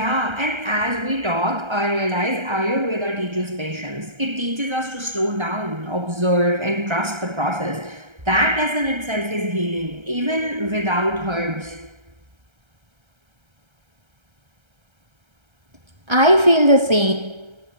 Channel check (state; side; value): late; left; 1.3 ms